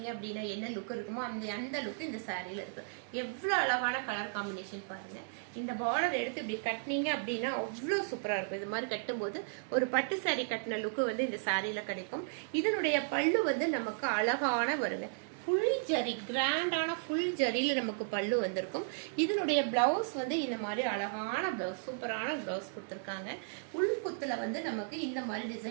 அப்படின்னா என்ன லுக் இருக்குமோ அந்த லுக் இந்த சாரியில் இருக்குது. எவ்வளோ அழகான கலர் காம்பினேஷன் பாருங்க. இந்த பார்டர் எடுத்து இப்படி கட்டினீங்க அப்படின்னா அவ்வளோ சூப்பராக இருக்கும். இது மாதிரி கட்டும்போது ஒரு பட்டு சாரி கட்டின லுக்கு வந்து இந்த சாரியில கிடைக்கும். இதனுடைய பல்லு வந்து நமக்கு அழகான வருங்க. ஃபுல் ஜரி, கிராண்டான ஃபுல் ஜரியில் நமக்கு பல்லு வந்திருக்கும். இதனுடைய பிளவுஸ் வந்து இந்த மாதிரி அழகான பிளவுஸ், சூப்பரான பிளவுஸ் கொடுத்துருக்காங்க. உள்குத்துல வந்து நமக்கு இந்த மாதிரி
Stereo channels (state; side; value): silent; left; 55 dB below the other